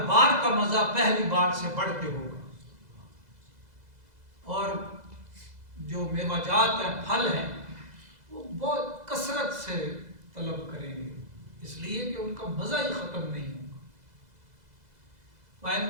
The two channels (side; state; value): left; late; 2.0 ms